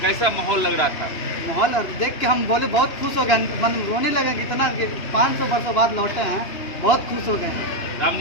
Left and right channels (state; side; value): late; right; 2.8 ms